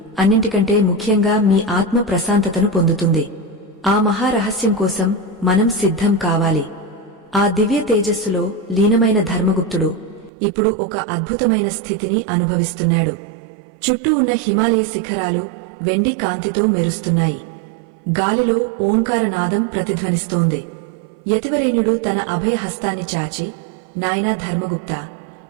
అన్నింటికంటే ముఖ్యంగా మీ ఆత్మ ప్రశాంతతను పొందుతుంది. ఆ మహారహస్యం కోసం మనం సిద్ధం కావాలి. ఆ దివ్య తేజస్సులో లీనమైన ధర్మగుప్తుడు ఇప్పుడు ఒక అద్భుతమైన స్థితిని అనుభవిస్తున్నాడు. చుట్టూ ఉన్న హిమాలయ శిఖరాలు వెండి కాంతితో మెరుస్తున్నాయి. గాలిలో ఓంకారనాదం ప్రతిధ్వనిస్తోంది. యతివరేణ్యుడు తన అభయహస్తాన్ని చాచి, నాయనా ధర్మగుప్త,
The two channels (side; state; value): left; drops out; at 10.3 s